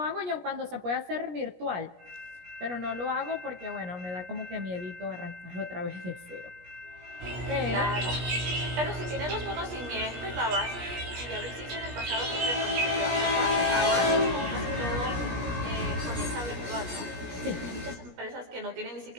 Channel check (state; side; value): late; left; 17 ms